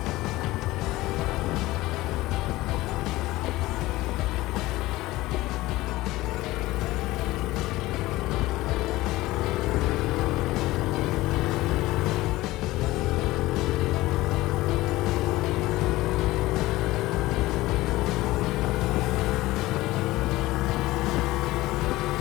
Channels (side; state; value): right; quieter; 18.3 dB